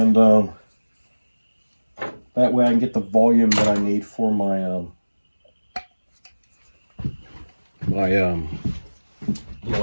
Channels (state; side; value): inverted; both; correlation -1.00